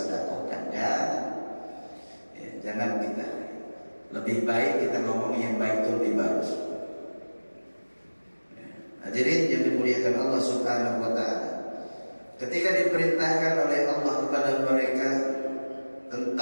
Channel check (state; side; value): inverted; both; correlation -1.00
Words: Jangan kita. Lebih baik kita ngomong yang baik itu lebih bagus. Hadirin yang dimuliakan Allah Subhanahu wa taala, ketika diperintahkan oleh Allah kepada mereka